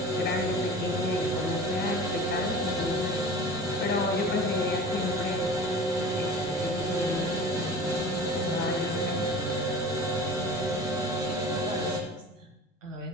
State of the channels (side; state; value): both; normal; correlation 0.38